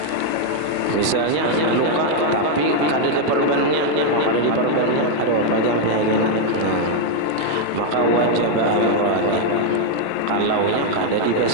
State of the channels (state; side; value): different; both; correlation 0.00